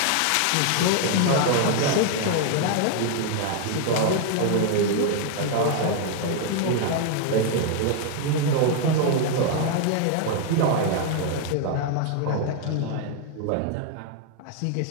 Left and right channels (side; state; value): both; different; correlation 0.00